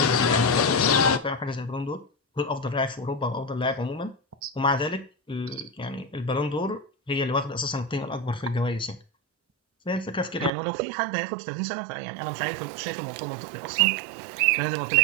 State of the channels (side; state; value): left; drops out; at 10.5 s